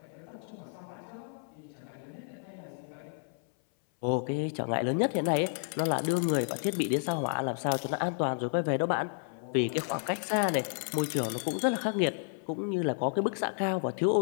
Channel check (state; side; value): silent; right; 57 dB below the other